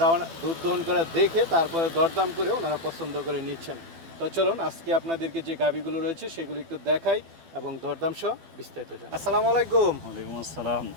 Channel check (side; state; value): left; late; 12 ms